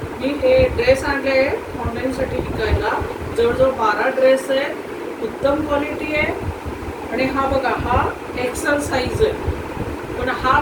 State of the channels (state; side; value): identical; both; correlation 1.00